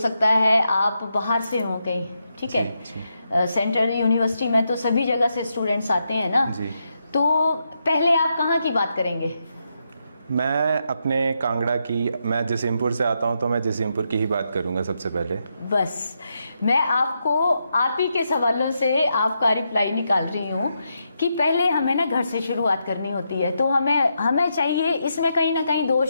है आप बाहर से हो कहीं, ठीक है, सेंट्रल यूनिवर्सिटी में तो सभी जगह से स्टूडेंट्स आते हैं ना जी। तो पहले आप कहाँ की बात करेंगे? मैं अपने कांगड़ा की, मैं जसीमपुर से आता हूँ तो मैं जसीमपुर की ही बात करूँगा सबसे पहले। बस मैं आपको आप ही के सवालों से आपका रिप्लाई निकाल रही हूँ कि पहले हमें ना घर से शुरुआत करनी होती है, तो हमें चाहिए, इसमें कहीं ना कहीं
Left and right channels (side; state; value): both; inverted; correlation -0.83